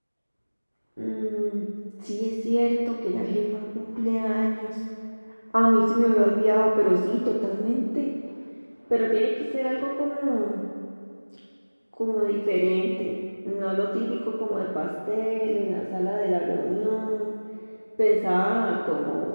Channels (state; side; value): inverted; both; correlation -1.00